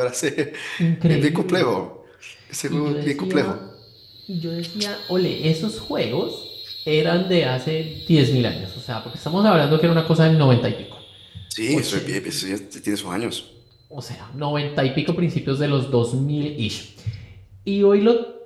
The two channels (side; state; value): both; identical; correlation 1.00